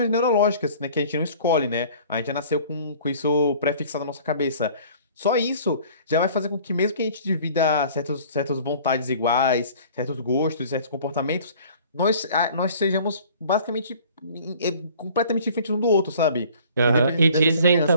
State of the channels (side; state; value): both; inverted; correlation -0.50